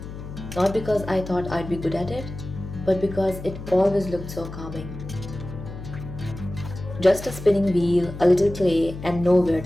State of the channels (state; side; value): noise; left; hum, 11 dB below the sound